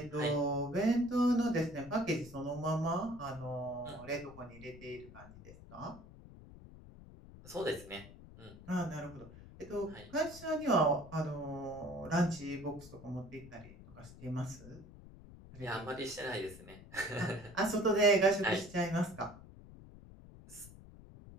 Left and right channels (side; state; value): left; noise; rumble, 18 dB below the sound